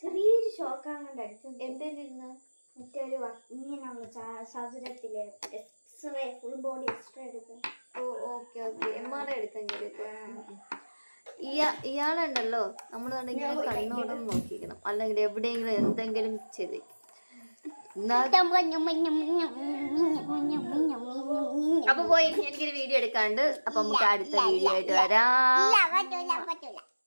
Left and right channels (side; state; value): both; inverted; correlation -1.00